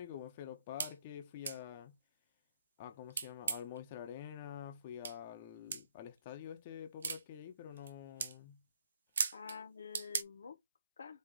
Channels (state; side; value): inverted; both; correlation -0.69